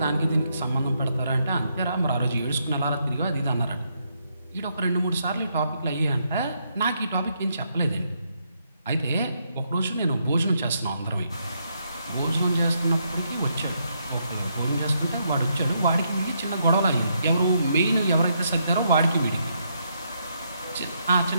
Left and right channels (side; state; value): both; inverted; correlation -0.77